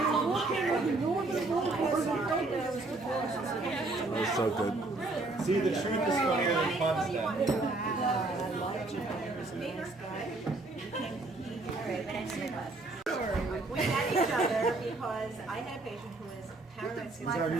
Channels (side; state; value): left; quieter; 3.1 dB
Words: That was so good. See, the truth is funnier than fun stuff. We met each other because I had a patient who was paranoid